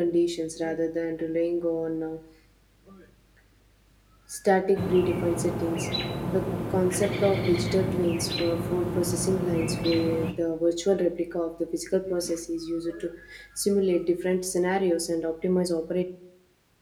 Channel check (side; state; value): both; identical; correlation 1.00